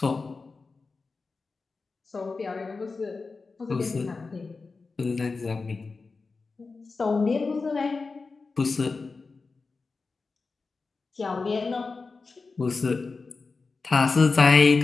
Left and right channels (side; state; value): right; quieter; 4.2 dB